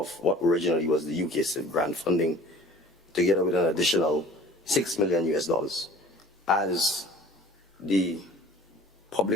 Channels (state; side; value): normal; both; correlation 0.46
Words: what originally was the UK CIF grant funding, together with an additional $6 million US. As the